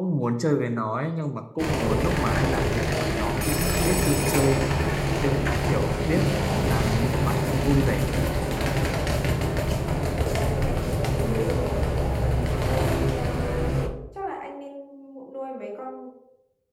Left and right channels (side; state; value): both; identical; correlation 1.00